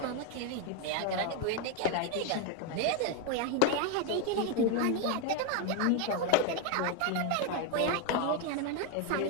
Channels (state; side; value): different; both; correlation 0.01